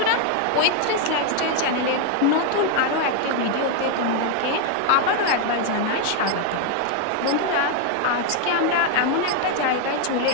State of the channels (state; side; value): different; both; correlation 0.00